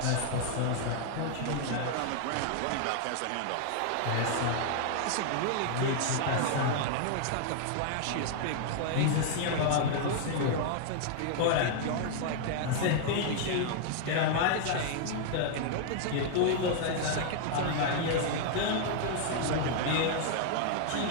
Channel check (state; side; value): different; both; correlation 0.00